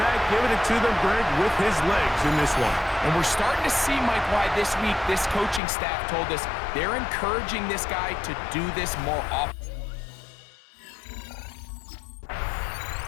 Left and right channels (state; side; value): drops out; right; at 5.6 s